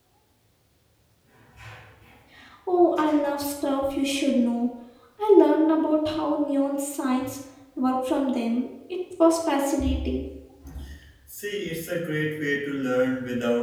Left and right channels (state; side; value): identical; both; correlation 1.00